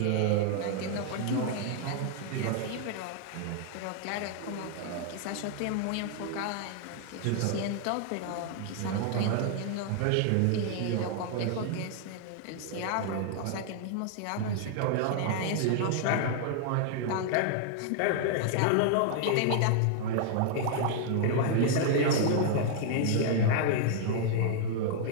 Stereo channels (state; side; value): different; both; correlation 0.00